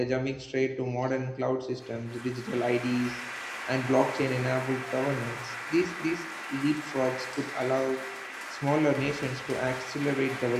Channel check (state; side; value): identical; both; correlation 1.00